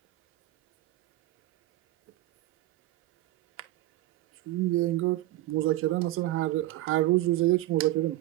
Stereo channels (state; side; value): quieter; left; 16.4 dB